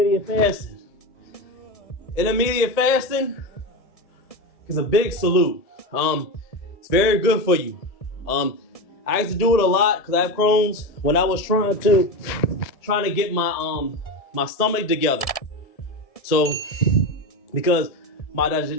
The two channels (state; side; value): late; right; 1.6 ms